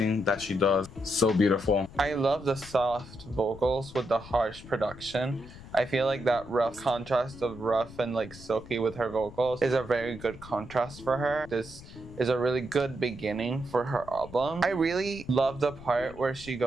that she does. So beautiful. I love the soft vocals with the harsh production. I feel like that rough contrast of rough and like silky with her vocals is a very good contrast for her. This is a really good beginning for her album. I really love the part where she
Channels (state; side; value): noise; left; rumble, 17 dB below the sound